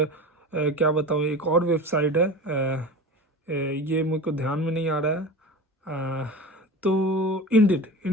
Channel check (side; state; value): both; normal; correlation 0.32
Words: क्या बताऊँ एक और वेबसाइट है, ये मेरे को ध्यान में नहीं आ रहा है, तो